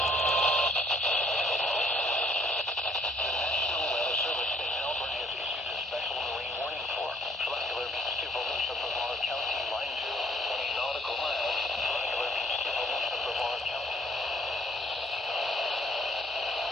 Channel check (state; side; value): normal; both; correlation 0.63